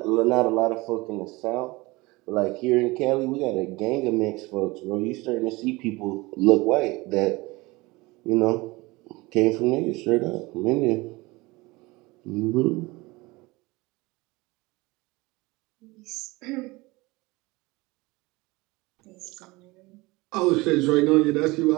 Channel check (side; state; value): left; quieter; 22.7 dB